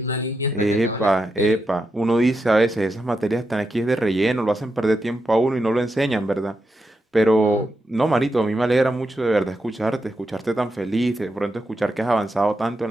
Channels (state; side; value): normal; both; correlation 0.86